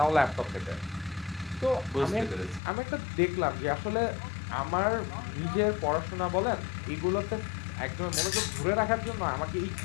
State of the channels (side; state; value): right; drops out; at 2.6 s